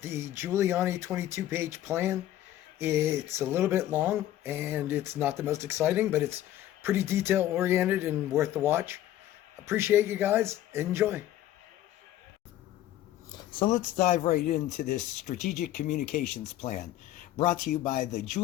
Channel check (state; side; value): quieter; right; 13.1 dB